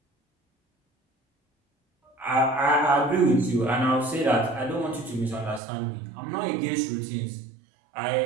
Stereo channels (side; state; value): left; drops out; at 5.6 s